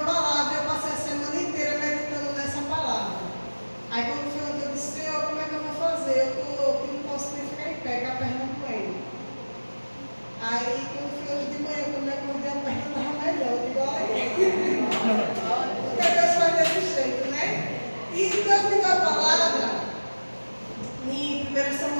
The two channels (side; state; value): both; inverted; correlation -1.00